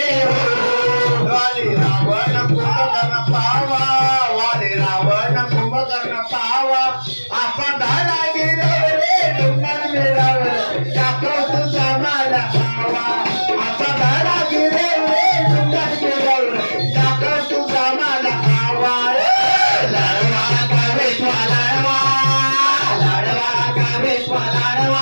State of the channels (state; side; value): inverted; both; correlation -1.00